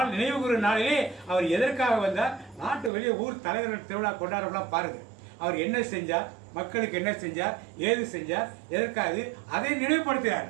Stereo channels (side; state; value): left; drops out; at 2.9 s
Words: நினைவு கூறும் நாளிலே அவர் எதற்காக வந்தார்? நாட்டு வெளியே ஊர் தலைவர்கள் திருவிழா கொண்டாடலாம் பாருங்க. அவர் என்ன செஞ்சார், மக்களுக்கு என்ன செஞ்சார், ஏது செஞ்சார், எதற்காக அதை நினைவுபடுத்துகிறார்.